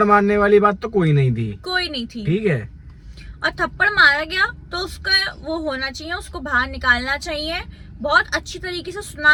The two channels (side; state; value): both; identical; correlation 1.00